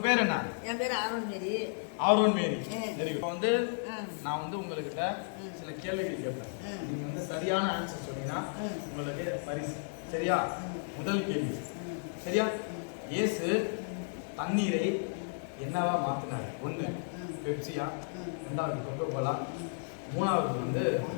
பேர் என்ன? என் பேர் ஆரோன் மேரி. ஆரோன் மேரி. சரி, இப்போ வந்து நான் வந்து உங்ககிட்ட சில கேள்விகள் கேட்பேன். நீங்க வந்து சரியான ஆன்சர் சொன்னீங்கன்னா உங்களுக்கு பரிசு. சரியா? முதல் கேள்வி சரியா? இயேசு தண்ணீரை என்னவா மாத்தினார்? ஒன்று பெப்சியா, ரெண்டாவது கொக்கோ கோலா, மூணாவது வந்து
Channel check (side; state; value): right; silent; digital silence